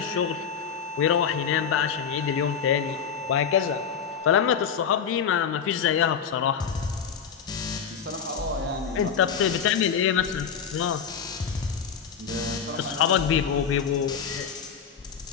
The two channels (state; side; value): quieter; right; 7.2 dB